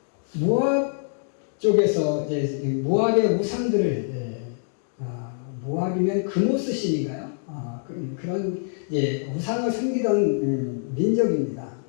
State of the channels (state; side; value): silent; right; digital silence